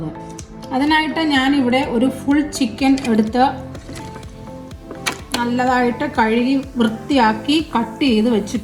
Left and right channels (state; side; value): identical; both; correlation 1.00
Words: അതിനായിട്ട് ഞാനിവിടെ ഒരു ഫുൾ ചിക്കൻ എടുത്ത് നല്ലതായിട്ട് കഴുകി വൃത്തിയാക്കി കട്ട് ചെയ്ത്